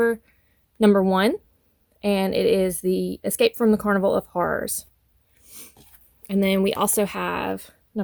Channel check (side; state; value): both; identical; correlation 1.00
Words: number 1, and it is the Escape from the Carnival of Horrors. And then we also have